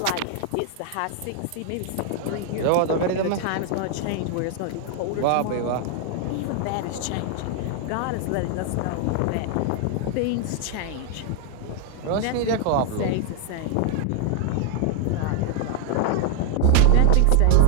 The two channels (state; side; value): different; both; correlation 0.00